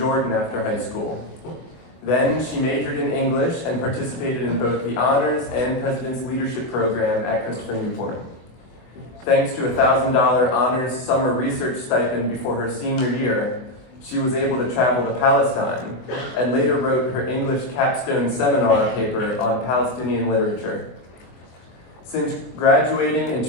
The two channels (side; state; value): right; late; 24 ms